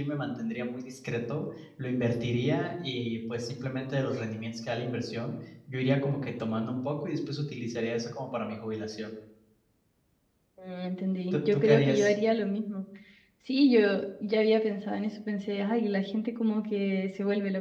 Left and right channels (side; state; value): both; identical; correlation 1.00